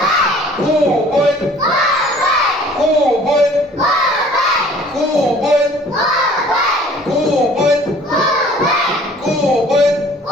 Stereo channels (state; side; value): normal; both; correlation 0.52